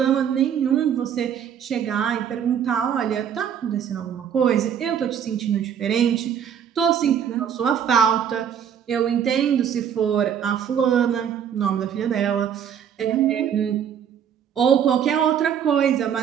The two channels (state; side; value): quieter; left; 8.5 dB